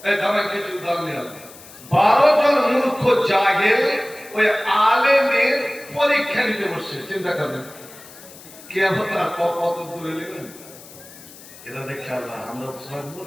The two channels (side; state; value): left; noise; hiss, 19 dB below the sound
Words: এই ধরেন কিছু উদাহরণ নিলাম, 12 জন মূর্খ জাহেল ওই আলেমের পরীক্ষা নিতে বসছে। চিন্তা করবেন কিয়ামত আর কত দূরে নেবেন। এরা দেখছে আল্লাহ, আমরা তো সবাই